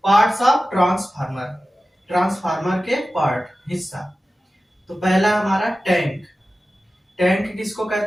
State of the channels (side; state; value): both; normal; correlation 0.95